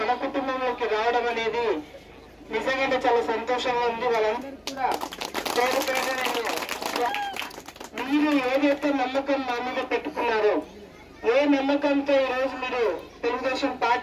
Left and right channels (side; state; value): both; identical; correlation 1.00